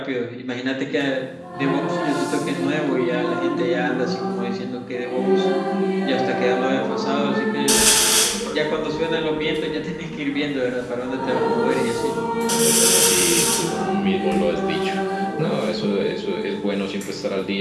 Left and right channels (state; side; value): identical; both; correlation 1.00